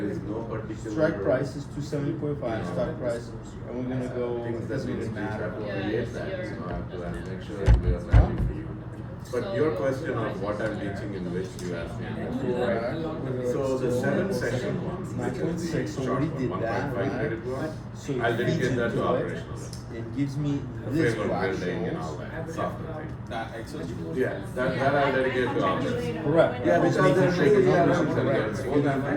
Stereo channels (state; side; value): identical; both; correlation 1.00